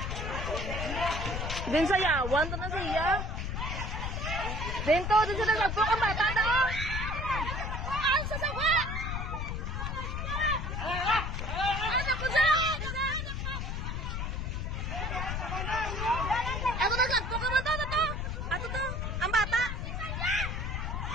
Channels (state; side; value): noise; left; rumble, 3 dB below the sound